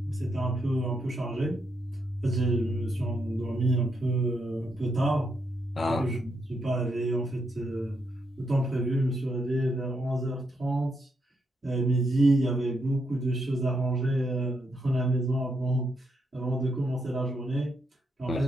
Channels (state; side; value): normal; both; correlation 0.80